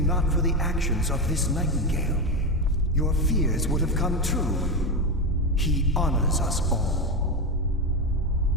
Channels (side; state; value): both; normal; correlation 0.14